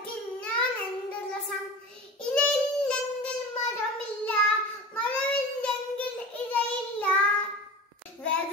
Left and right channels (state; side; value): normal; both; correlation 0.33